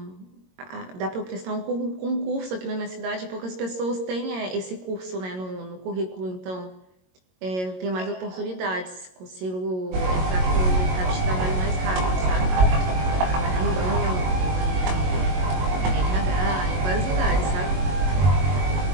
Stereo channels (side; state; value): left; late; 22 ms